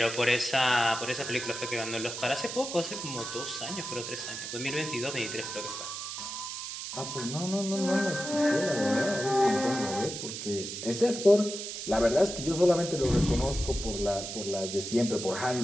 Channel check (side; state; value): right; noise; hiss, 7 dB below the sound